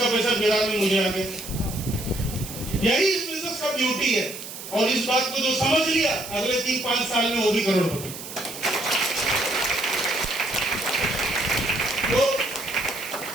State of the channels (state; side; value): noise; right; hiss, 11 dB below the sound